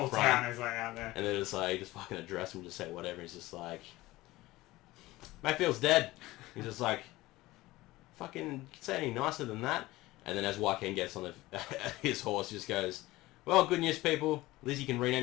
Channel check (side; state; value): right; quieter; 18.6 dB